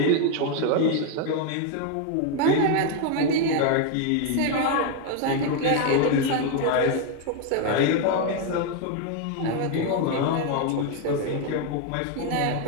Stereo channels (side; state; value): both; different; correlation 0.01